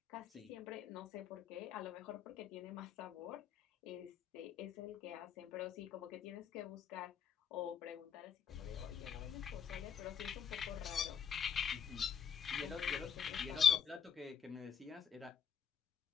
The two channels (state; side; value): quieter; right; 7.7 dB